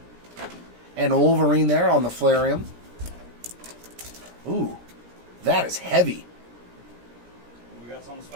and Wolverine there on the Flairium. Ooh, that is heavy. We got something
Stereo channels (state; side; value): late; left; 17 ms